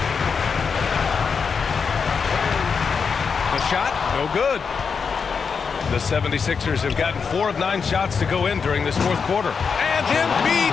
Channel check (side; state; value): right; quieter; 5.8 dB